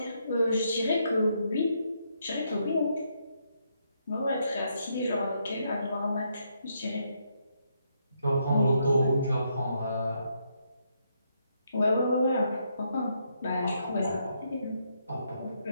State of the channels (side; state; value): both; inverted; correlation -0.77